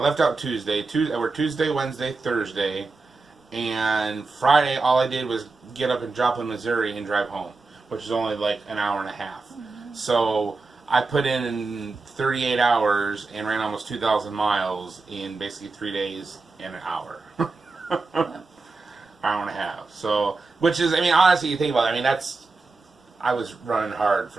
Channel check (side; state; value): left; quieter; 3.8 dB